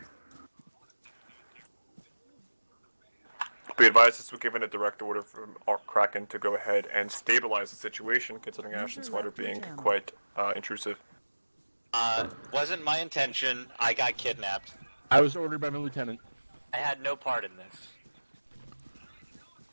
Be advised this was given a direct order from Kraken to go ahead and stabilize the situation, considering User Ashton Swider left your being channel. quite intrusive. Wasn't my intention. I got kidnapped. I was ordered by my lieutenant. I had no part in this.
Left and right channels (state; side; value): inverted; both; correlation -1.00